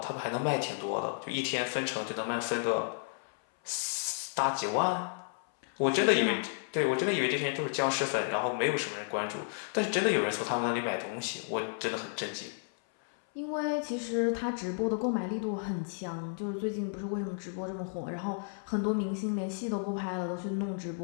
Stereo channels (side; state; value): right; silent; 56 dB below the other